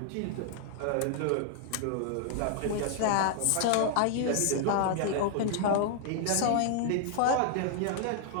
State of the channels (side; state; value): both; different; correlation 0.00